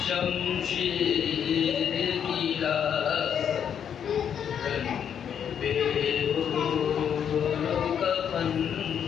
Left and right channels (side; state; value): right; quieter; 8.4 dB